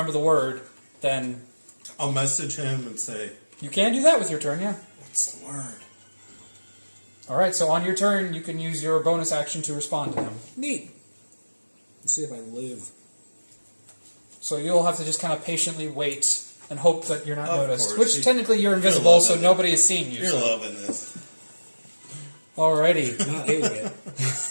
the word, then I'll message him and say, you can do that with your turn, yeah. what's the word? Alright, so on your turn, you can use your bonus action to respond to him. Neat. Let's see if I live. So you'll have to just kind of patiently wait and hope that you're not Of noticed. course. Which technically you're invisible, loving so it. nobody has seen you. You're so. loving this. Alrighty. Not hating it.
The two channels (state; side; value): inverted; both; correlation -1.00